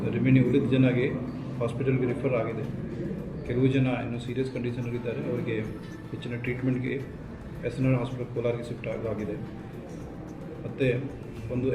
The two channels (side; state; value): both; identical; correlation 1.00